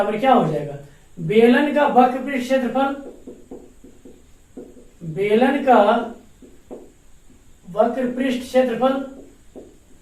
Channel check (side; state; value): both; identical; correlation 1.00